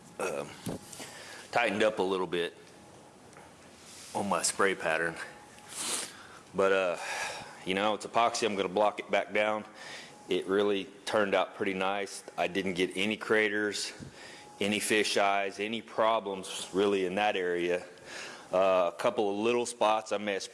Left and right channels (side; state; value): both; identical; correlation 1.00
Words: tightened up a little bit on my spray pattern. But it's epoxy. I'm going to block it back down. It really turned out pretty nice. I didn't get any craters, any fish eyes, any problems really in that area. A couple of little spots I may have